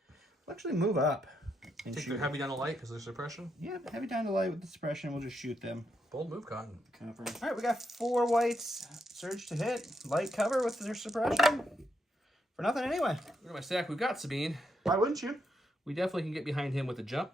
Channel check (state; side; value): normal; both; correlation 0.80